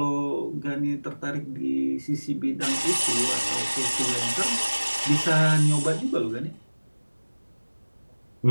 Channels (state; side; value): inverted; both; correlation -1.00